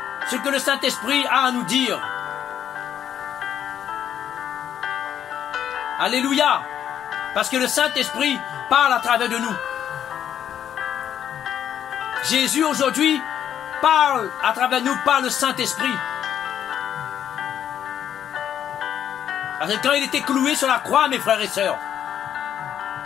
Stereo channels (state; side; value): quieter; right; 9.7 dB